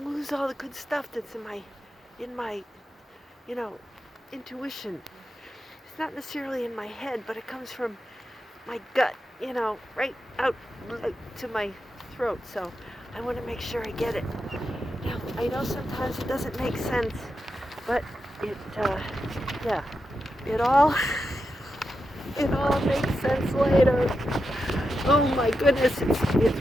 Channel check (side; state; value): both; normal; correlation 0.87